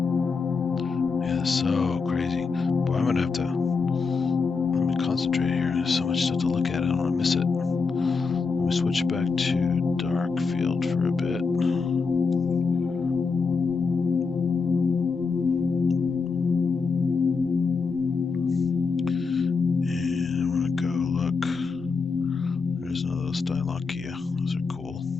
Yeah, so crazy. Boy, I'm gonna have to let me concentrate here. There's so much stuff to look at. I don't want to miss it. Let me switch back to dark field for a bit. And I want to go look. There's another Stylochia. Those are cool.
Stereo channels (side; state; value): right; quieter; 4.8 dB